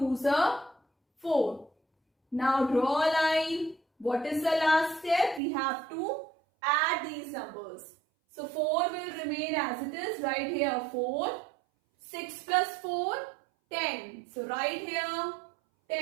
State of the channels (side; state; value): left; drops out; at 5.4 s